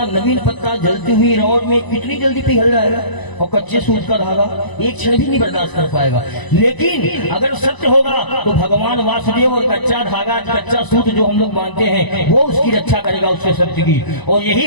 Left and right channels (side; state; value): right; late; 1.0 ms